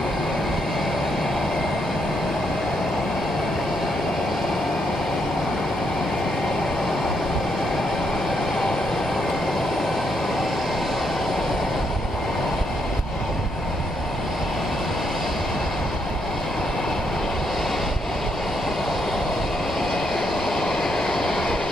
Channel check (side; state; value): both; normal; correlation 0.77